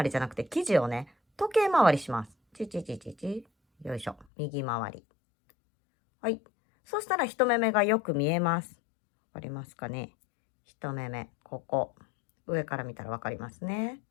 りじゃなくて、生地をね、時計回りします。チチチチチ。よいしょ。右回り。はい。そしたら1目目がよく見えます。わかりますかね。1目目、ここ。上から見たらわかりますね。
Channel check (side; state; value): right; drops out; at 4.2 s